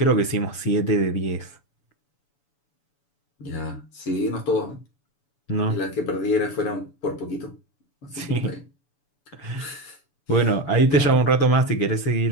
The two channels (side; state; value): right; late; 7.0 ms